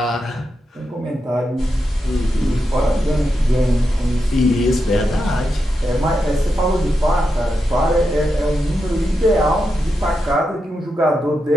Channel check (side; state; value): both; normal; correlation 0.87